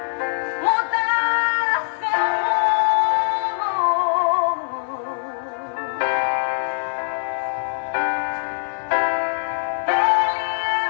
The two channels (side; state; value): right; silent; digital silence